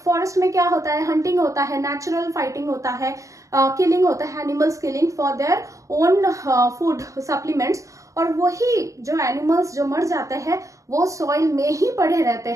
फॉरेस्ट में क्या होता है, हंटिंग होता है, नेचुरल फाइटिंग होता है, किलिंग होता है, animals killing for their own food supplements. और वही जो एनिमल्स जो मर जाते हैं वो सॉइल में ही पड़े रहते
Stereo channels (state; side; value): late; left; 0.16 ms